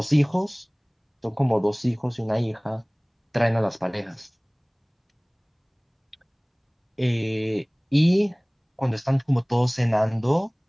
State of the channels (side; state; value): both; identical; correlation 1.00